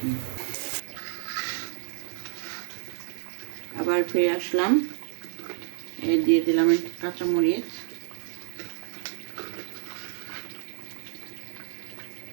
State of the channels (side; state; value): left; silent; 58 dB below the other